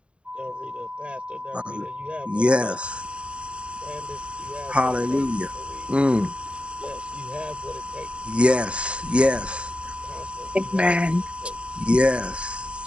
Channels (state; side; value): late; left; 0.057 ms